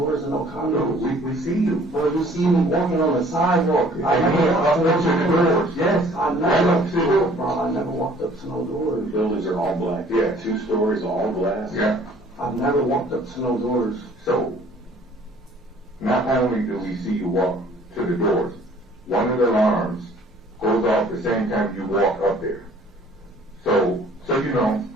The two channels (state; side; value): normal; both; correlation 0.55